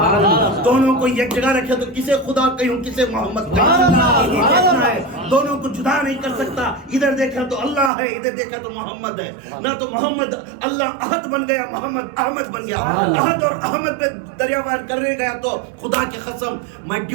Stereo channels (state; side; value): drops out; left; at 7.9 s